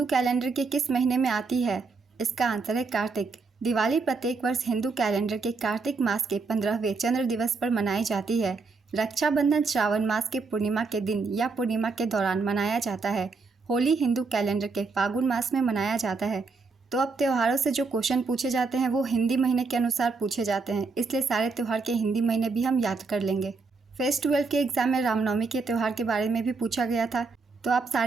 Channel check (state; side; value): quieter; left; 4.3 dB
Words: कैलेंडर के किस महीने में आती है? इसका आंसर है कार्तिक। दिवाली प्रत्येक वर्ष हिंदू कैलेंडर के कार्तिक मास के 15वें चंद्र दिवस पर मनाई जाती है। रक्षाबंधन श्रावण मास के पूर्णिमा के दिन या पूर्णिमा के दौरान मनाया जाता है। होली हिंदू कैलेंडर के फागुन मास में मनाया जाता है। तो अब त्योहारों से जो क्वेश्चन पूछे जाते हैं वो हिंदी महीने के अनुसार पूछे जाते हैं, इसलिए सारे त्यौहार के हिंदी महीने भी हम याद कर लेंगे। फेस 12 के एग्जाम में रामनवमी के त्यौहार के बारे में भी पूछा गया था, तो आप